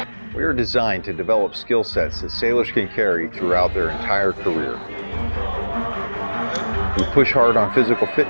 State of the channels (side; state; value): both; inverted; correlation -1.00